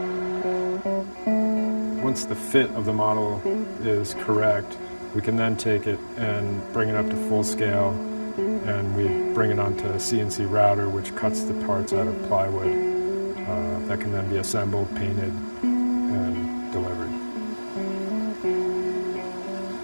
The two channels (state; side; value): inverted; both; correlation -1.00